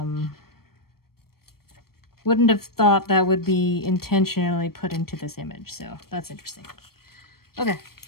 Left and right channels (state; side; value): late; right; 0.94 ms